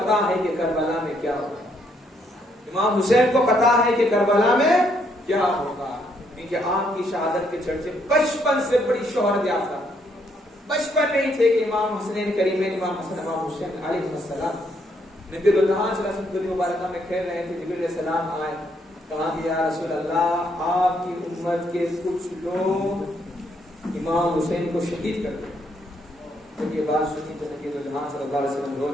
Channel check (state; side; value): normal; both; correlation 0.72